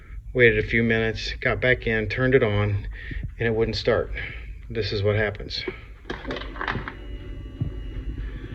waited a few minutes, got back in, turned it on, and it wouldn't start. This is what happens.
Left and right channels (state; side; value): identical; both; correlation 1.00